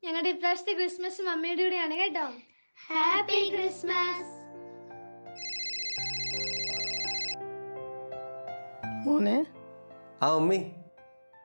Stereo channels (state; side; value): inverted; both; correlation -1.00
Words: ഞങ്ങളുടെ ഇപ്രാവശ്യത്തെ ക്രിസ്മസ് മമ്മിയുടെ കൂടെയാണ് കേട്ടോ. Happy Christmas. മോനെ. ആ മമ്മി,